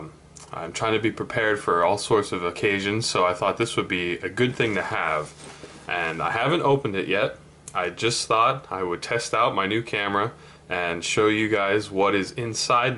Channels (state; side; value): identical; both; correlation 1.00